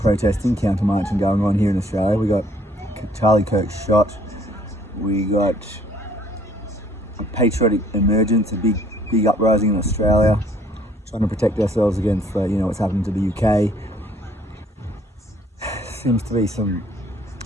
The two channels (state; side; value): normal; both; correlation 0.60